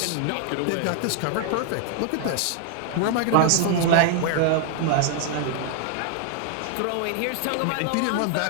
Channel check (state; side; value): different; both; correlation 0.00